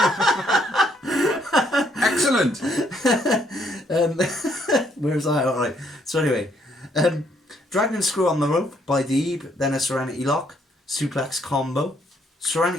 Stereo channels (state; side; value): normal; both; correlation 0.69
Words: Excellent. Where was I? Alright. So anyway, Dragon Screw on the rope by Deeb, then a Serenity Lock, suplex combo.